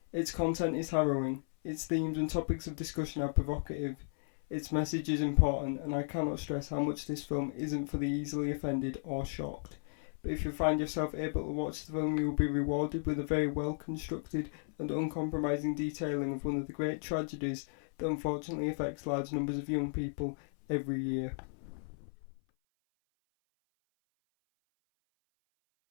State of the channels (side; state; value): right; silent; 55 dB below the other